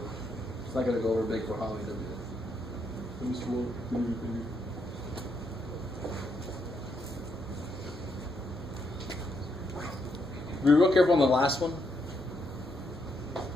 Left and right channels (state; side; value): normal; both; correlation 0.77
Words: It's not going to go over big for Holly, does it? Be real careful on the last one.